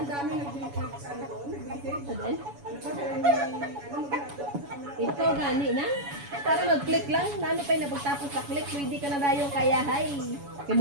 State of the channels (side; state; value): left; late; 7.1 ms